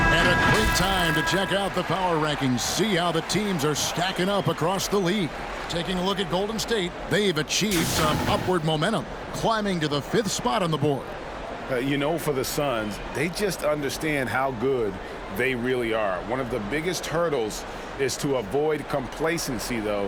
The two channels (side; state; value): both; identical; correlation 1.00